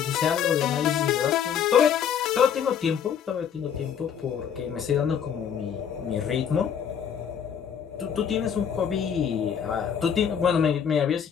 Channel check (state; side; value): quieter; right; 8.1 dB